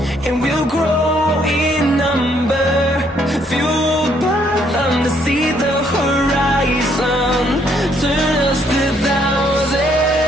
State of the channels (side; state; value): both; normal; correlation 0.69